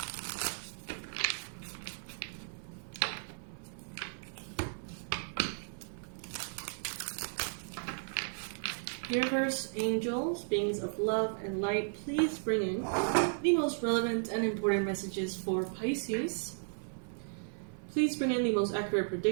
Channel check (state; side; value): silent; left; 54 dB below the other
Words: Universe, angels, beings of love and light, please bring in the most relevant and important messages for Pisces. Please bring in the most accurate